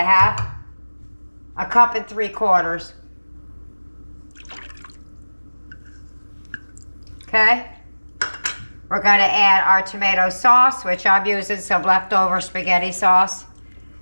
1 3/4 cups. Okay. We're going to add our tomato sauce, which I'm using some leftover spaghetti sauce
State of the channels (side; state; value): both; inverted; correlation -1.00